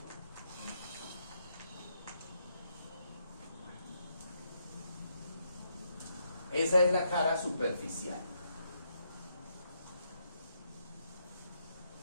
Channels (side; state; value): both; inverted; correlation -0.77